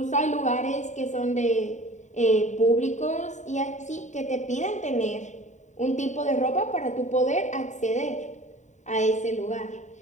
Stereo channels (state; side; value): late; right; 0.34 ms